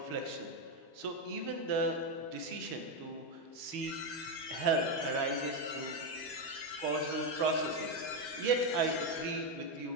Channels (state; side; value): late; right; 12 ms